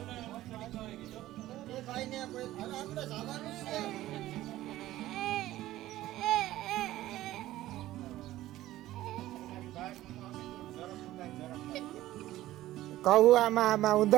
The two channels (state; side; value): quieter; left; 15.2 dB